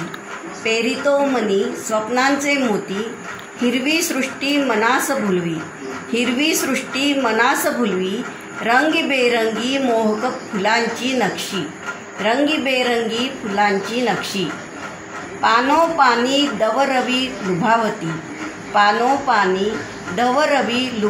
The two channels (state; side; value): identical; both; correlation 1.00